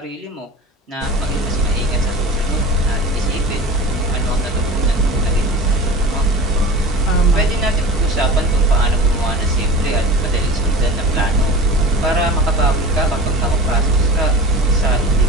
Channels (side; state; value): both; normal; correlation 0.36